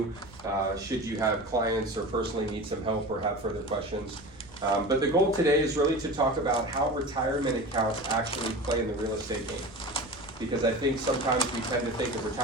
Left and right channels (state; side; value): noise; right; rumble, 23 dB below the sound